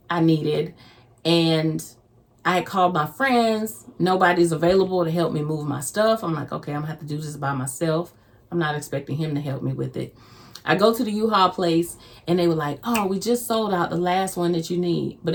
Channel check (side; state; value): both; identical; correlation 1.00